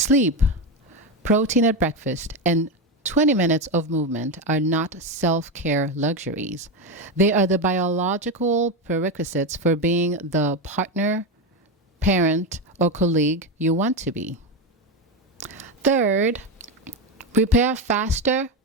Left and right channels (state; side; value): normal; both; correlation 0.13